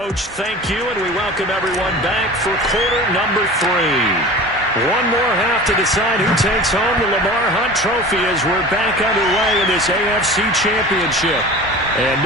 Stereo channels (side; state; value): both; normal; correlation 0.37